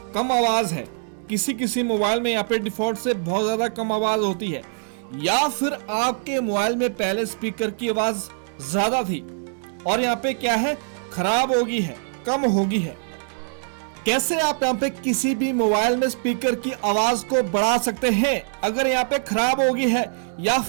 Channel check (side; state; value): left; silent; 63 dB below the other